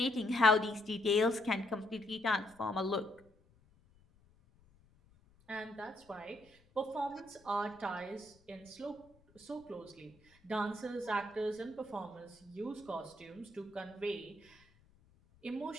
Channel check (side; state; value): left; noise; rumble, 29 dB below the sound